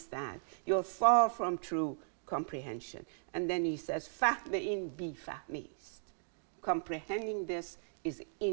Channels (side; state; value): left; silent; digital silence